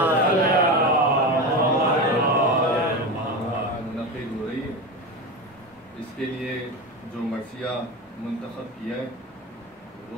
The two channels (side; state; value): both; normal; correlation 0.22